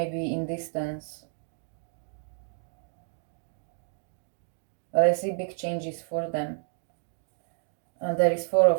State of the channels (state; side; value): silent; left; digital silence